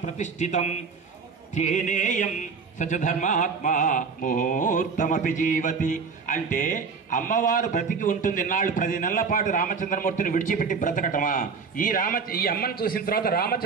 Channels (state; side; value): quieter; left; 5.3 dB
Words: ప్రతిష్ఠితం తేనేయం సచధర్మాత్మా ముహూర్తమపి జీవతి. అంటే అమ్మవారు బ్రతికి ఉంటుంది ఇన్నాళ్ళు, 10 నెలల పాటు రామచంద్రమూర్తిని విడిచిపెట్టి బ్రతకటమా? ఈ అమ్మని చూసిన తర్వాత